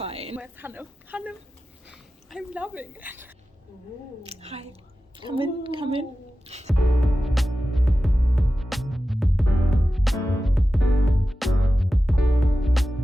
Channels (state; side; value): normal; both; correlation 0.94